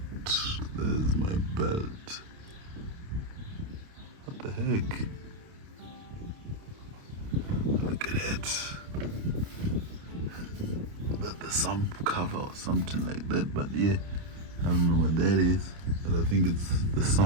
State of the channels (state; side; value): late; left; 29 ms